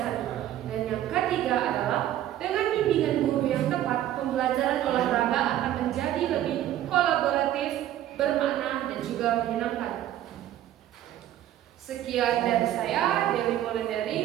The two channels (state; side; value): quieter; left; 12.5 dB